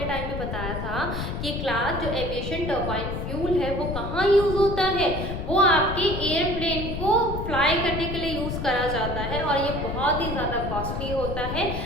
टाइम में बताया था कि क्लास जो एविएशन टर्बाइन फ्यूल है वो कहाँ यूज होता है, वो आपके एयरप्लेन को फ्लाई करने के लिए यूज करा जाता है, और ये बहुत ही ज़्यादा कॉस्टली होता है,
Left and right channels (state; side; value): noise; left; rumble, 4 dB below the sound